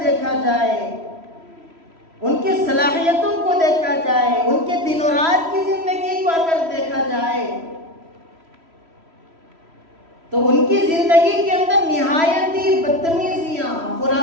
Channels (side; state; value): left; late; 3.1 ms